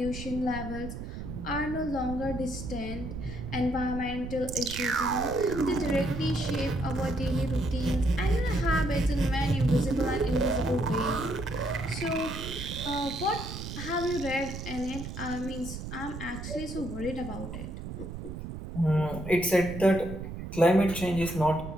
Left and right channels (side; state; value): right; noise; rumble, 8 dB below the sound